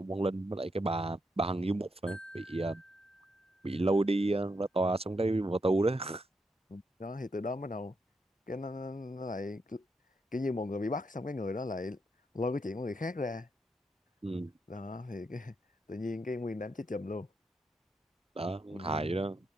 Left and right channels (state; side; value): normal; both; correlation 0.81